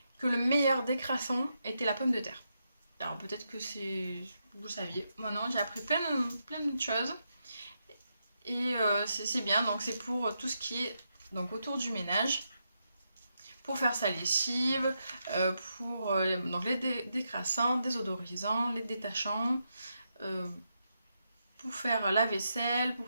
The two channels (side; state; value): both; inverted; correlation -0.83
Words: que le meilleur décrassant était la pomme de terre. Alors peut-être que vous saviez. Moi non, j'ai appris plein de choses. Et c'est bien, donc c'est pour tout ce qui est donc, autour du ménage. Pour faire sa lessive, pour donc les décrassants, désodorisants, les détachants, pour faire la vaisselle,